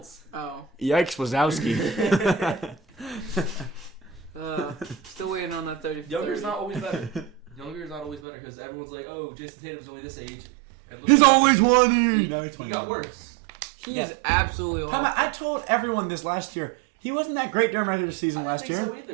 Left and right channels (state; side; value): drops out; left; at 8.2 s